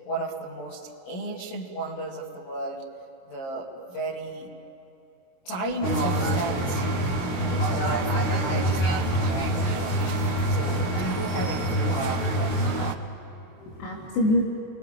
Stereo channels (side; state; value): right; late; 23 ms